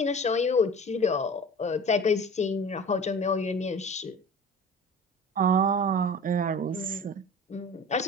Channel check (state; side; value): normal; both; correlation 0.39